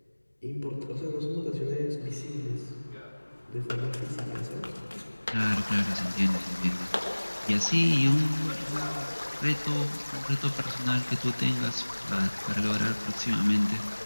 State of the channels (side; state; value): both; inverted; correlation -1.00